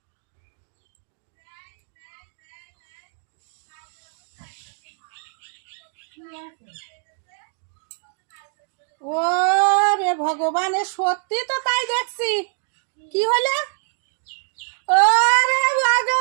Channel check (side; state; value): left; silent; digital silence